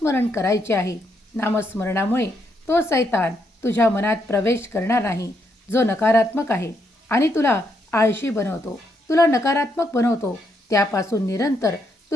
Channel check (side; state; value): both; normal; correlation 0.77